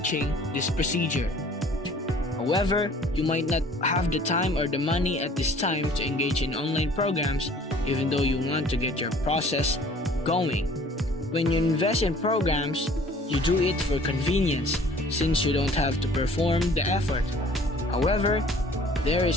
this procedure. However, you might not have the time or the money at this time to engage in online programs, even though you want to get your process going. When you invest in programs, you do it for convenience, since you don't have to perform the effort. However, there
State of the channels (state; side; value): normal; both; correlation 0.52